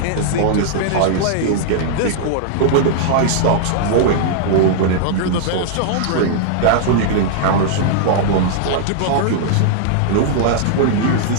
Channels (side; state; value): both; different; correlation -0.01